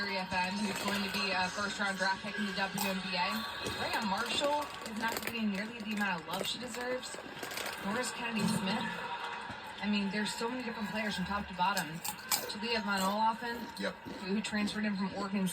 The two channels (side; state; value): both; identical; correlation 1.00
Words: who's going to be a first-round draft pick in the WNBA. Rhea Marshall is not getting nearly the amount of love she deserves. Norris Kennedy-Smith. I mean, there's so many different players from top to bottom. Talia Von Olaffen, who transferred in from Oregon